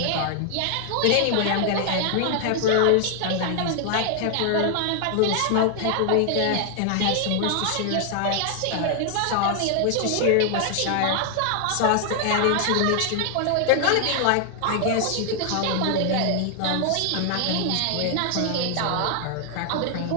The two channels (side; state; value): both; different; correlation 0.00